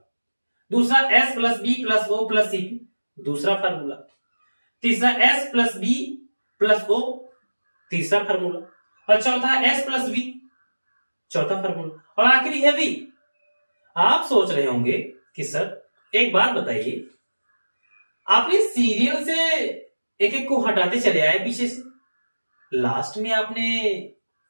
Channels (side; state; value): both; inverted; correlation -1.00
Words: दूसरा S plus B plus O plus CB, दूसरा फार्मूला। तीसरा S plus B plus O, तीसरा फार्मूला। और चौथा एस प्लस बी, चौथा फार्मूला। और आखिरी है वी। आप सोच रहे होंगे कि सर एक बात बताइए, आपने सीरियल से एक एक को हटाते चले आए पीछे से, लास्ट में आपने